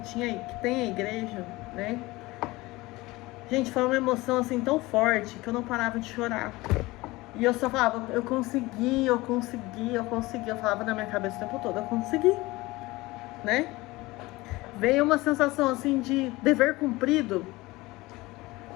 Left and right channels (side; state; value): right; quieter; 20.7 dB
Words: tem a igreja, né? Gente, foi uma emoção assim tão forte que eu não parava de chorar. E eu só falava, eu consegui. Eu falava na minha cabeça o tempo todo, eu consegui, né? Veio uma sensação assim de dever cumprido,